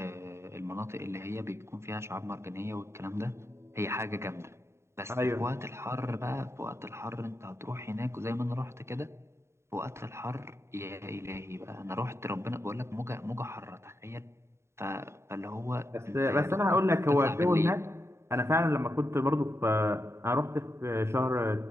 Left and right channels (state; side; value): late; left; 0.13 ms